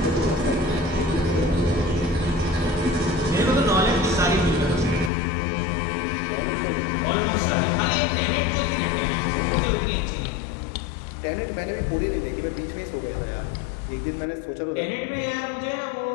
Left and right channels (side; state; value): right; drops out; at 5.1 s